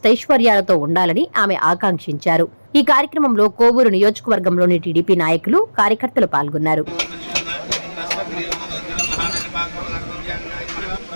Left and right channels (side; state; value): both; inverted; correlation -1.00